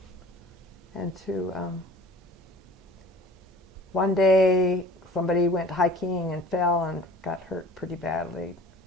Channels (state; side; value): normal; both; correlation 0.46